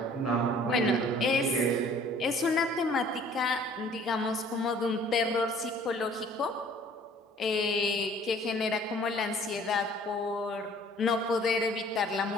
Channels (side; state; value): both; normal; correlation 0.54